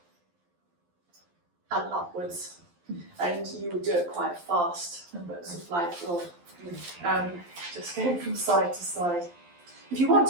and upwards. And you would do it quite fast, but sort of like just going from side to side. If you want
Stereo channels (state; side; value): late; left; 11 ms